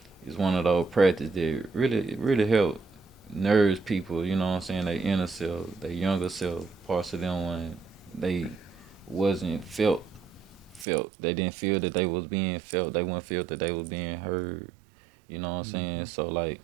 is one of those practices that really help nourish people, you know what I'm saying, their inner self, their younger self, parts of them when they wasn't felt. They didn't feel that they was being felt. They wouldn't feel that they was being heard. You know what I'm saying? Hmm. So like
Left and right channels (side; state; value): left; drops out; at 10.9 s